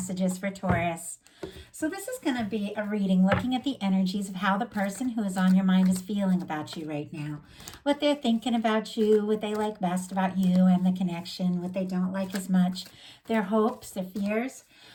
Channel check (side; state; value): both; identical; correlation 1.00